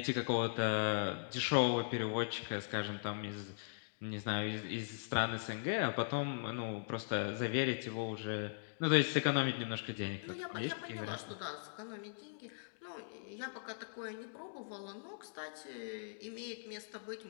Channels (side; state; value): right; silent; digital silence